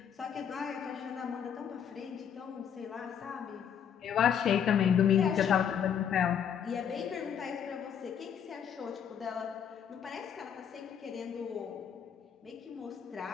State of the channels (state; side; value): quieter; right; 8.3 dB